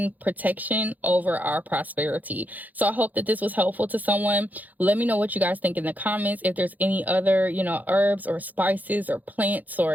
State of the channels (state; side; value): late; left; 0.081 ms